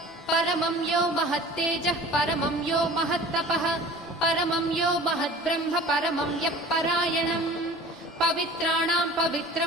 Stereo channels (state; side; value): normal; both; correlation 0.43